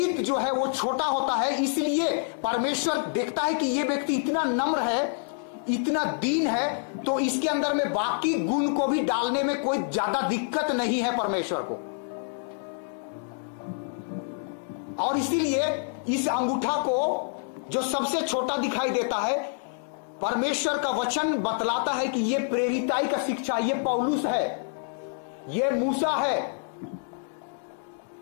जो है वो छोटा होता है, इसलिए परमेश्वर देखता है कि ये व्यक्ति इतना नम्र है, इतना दीन है, तो इसके अंदर में बाकी गुण को भी डालने में कोई ज्यादा दिक्कत नहीं है परमेश्वर को। और इसीलिए इस अंगूठा को जो सबसे छोटा दिखाई देता है, परमेश्वर का वचन बतलाता है कि ये प्रेरिताई का शिक्षा, ये पौलुस है, ये मूसा है,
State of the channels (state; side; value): silent; right; digital silence